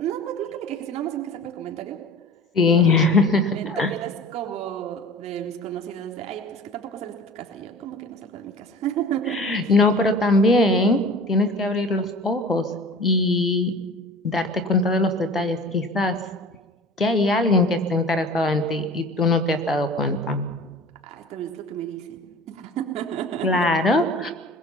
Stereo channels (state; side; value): normal; both; correlation 0.41